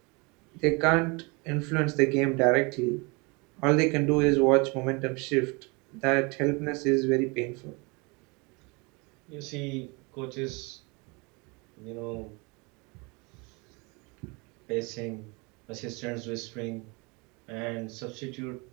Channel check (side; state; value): left; quieter; 28.6 dB